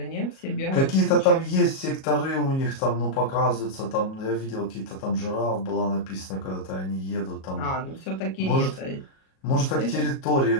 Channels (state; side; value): late; right; 37 ms